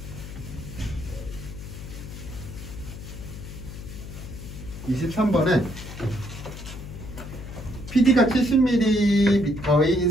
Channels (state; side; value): noise; left; hum, 11 dB below the sound